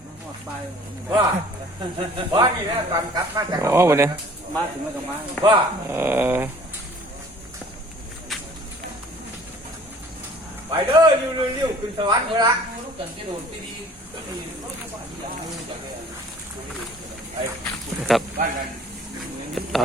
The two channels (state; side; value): normal; both; correlation 0.51